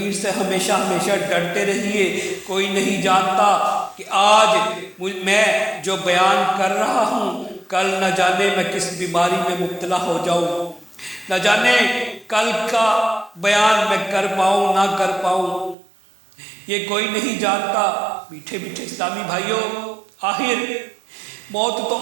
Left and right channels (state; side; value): drops out; left; at 15.8 s